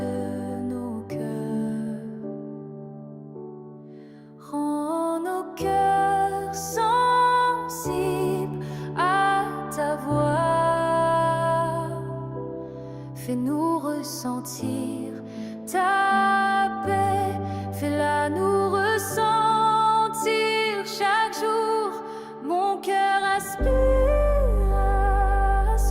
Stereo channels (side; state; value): both; identical; correlation 1.00